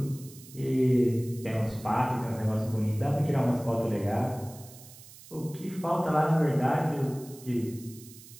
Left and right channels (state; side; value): noise; right; hiss, 19 dB below the sound